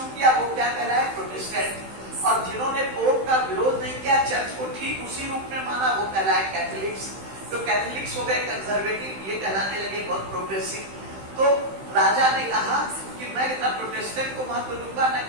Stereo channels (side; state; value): left; late; 16 ms